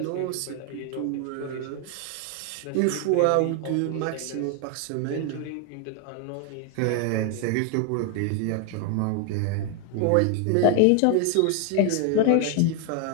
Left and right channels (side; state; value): both; different; correlation 0.00